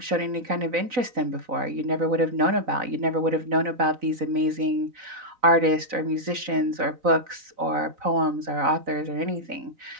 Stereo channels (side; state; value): left; late; 4.0 ms